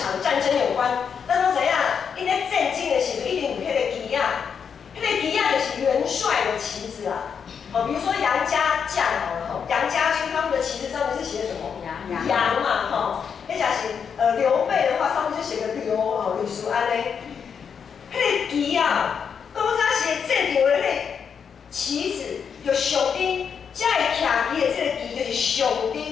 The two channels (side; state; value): right; quieter; 6.9 dB